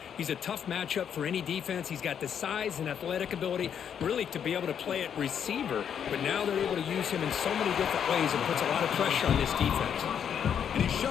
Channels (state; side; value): quieter; right; 8.3 dB